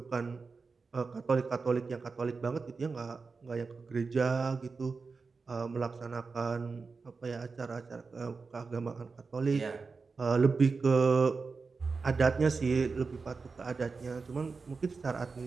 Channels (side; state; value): left; quieter; 4.5 dB